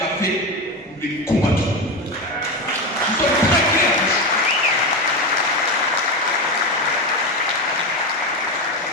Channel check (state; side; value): normal; both; correlation 0.17